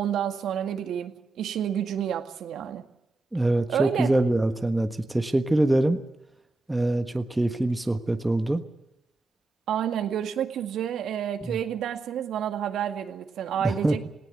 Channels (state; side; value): quieter; left; 3.2 dB